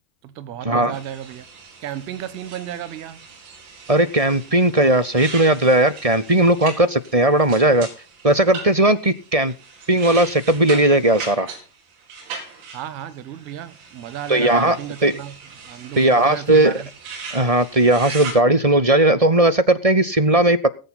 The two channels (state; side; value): late; left; 1.7 ms